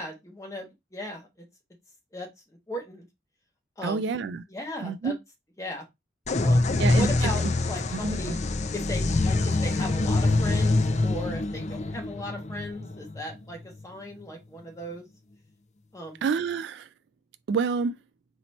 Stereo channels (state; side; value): normal; both; correlation 0.74